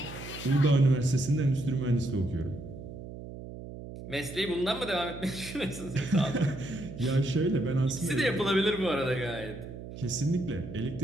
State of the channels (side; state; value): right; noise; hum, 12 dB below the sound